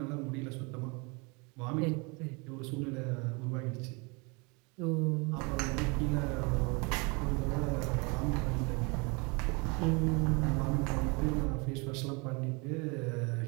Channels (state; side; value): quieter; left; 29.7 dB